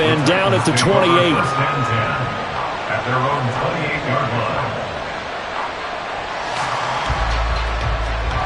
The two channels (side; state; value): both; identical; correlation 1.00